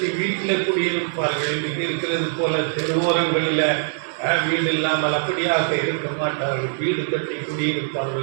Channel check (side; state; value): left; silent; 64 dB below the other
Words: வீட்டில் குடியிருப்பார்கள். இன்றைக்கு இருக்கிறது போல தெருவோரங்களில் வீடு இல்லாமல் அப்படியாக இருக்க மாட்டார்கள், வீடு கட்டி